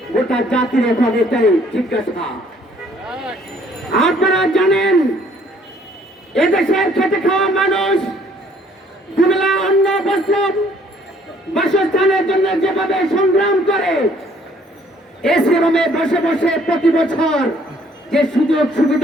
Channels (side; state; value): both; normal; correlation 0.61